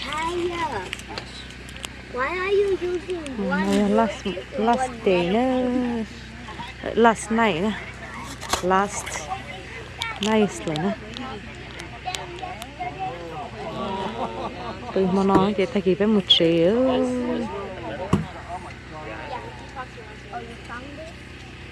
why are you using one? last day nữa last night nữa last night rồi nữa từ mà nói chị thay kịp với một triệu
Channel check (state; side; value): identical; both; correlation 1.00